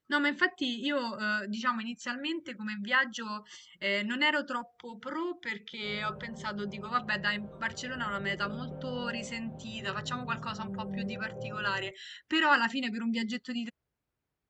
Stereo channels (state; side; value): identical; both; correlation 1.00